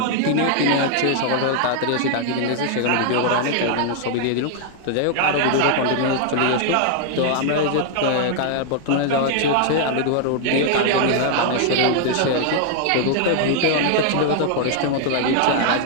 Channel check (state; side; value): different; both; correlation 0.00